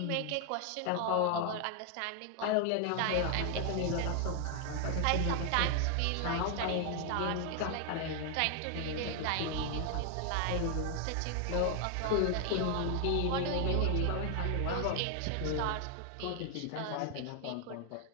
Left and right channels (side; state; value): both; different; correlation 0.00